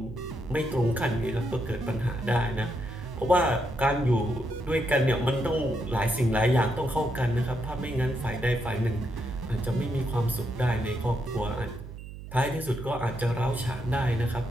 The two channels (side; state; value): right; noise; hum, 12 dB below the sound